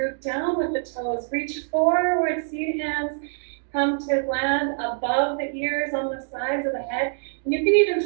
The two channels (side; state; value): left; silent; digital silence